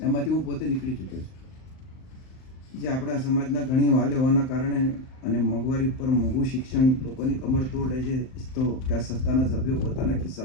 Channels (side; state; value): right; late; 38 ms